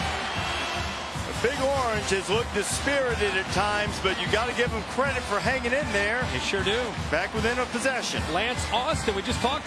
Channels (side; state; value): both; identical; correlation 1.00